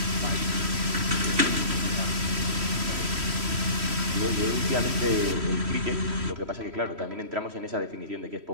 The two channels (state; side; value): late; left; 3.1 ms